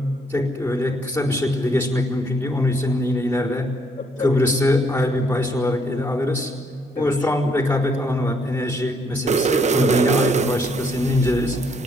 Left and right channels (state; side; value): normal; both; correlation 0.70